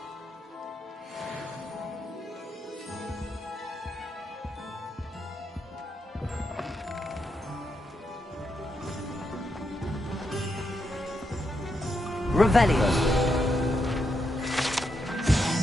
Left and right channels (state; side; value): normal; both; correlation 0.82